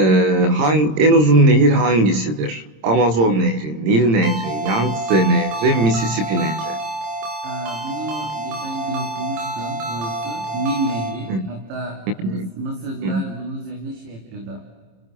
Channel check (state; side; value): late; left; 26 ms